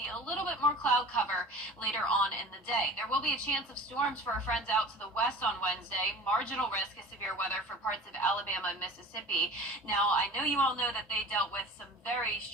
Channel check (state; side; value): normal; both; correlation 0.41